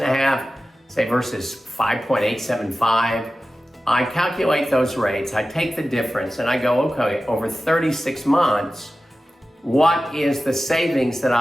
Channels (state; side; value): normal; both; correlation 0.95